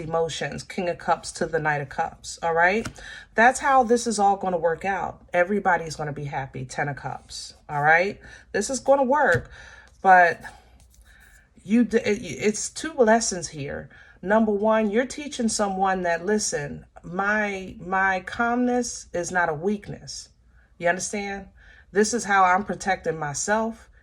King of Cups to the Knight of Cups. All right. That's how this is all going to work out. Everybody's going to be happy. 10 of Cups. All right. This is going to work, but it's two lessons here. Number one, you're teaching someone that, listen, my calmness is not a weakness. You understand? This is how I'm protecting myself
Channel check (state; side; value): identical; both; correlation 1.00